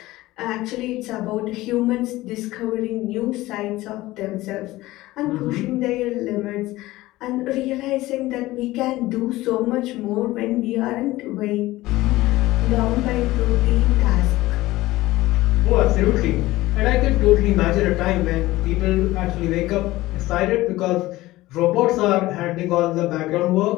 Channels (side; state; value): right; quieter; 17.9 dB